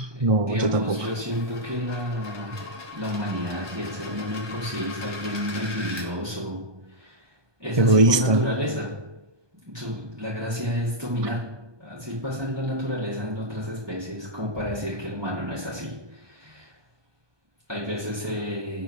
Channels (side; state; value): left; late; 1.2 ms